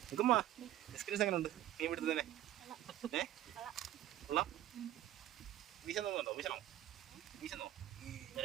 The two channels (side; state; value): left; quieter; 13.1 dB